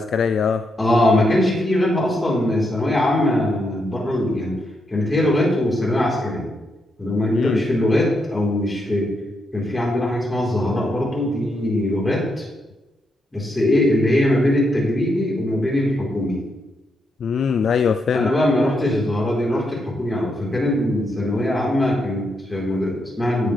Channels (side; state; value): both; normal; correlation 0.81